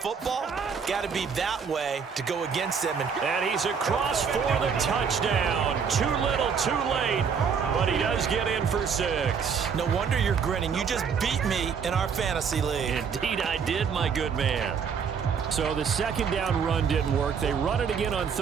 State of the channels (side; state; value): left; quieter; 6.4 dB